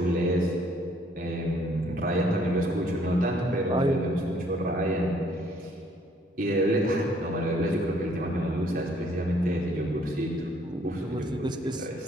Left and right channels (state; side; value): normal; both; correlation 0.63